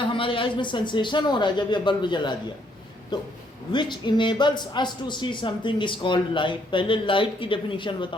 हमारे आइज में सेंसेशन हो रहा है जब ये बल्ब जला दिया। तो which enables us to see something is called light. पहले लाइट की डेफिनेशन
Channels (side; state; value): both; normal; correlation 0.70